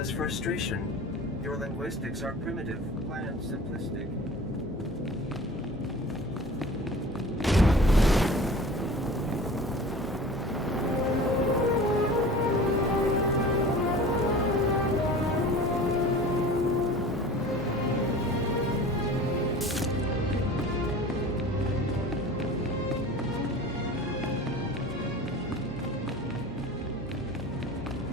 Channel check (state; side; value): normal; both; correlation 0.40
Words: frustration. Your linguistics are primitive, bland, simplistic.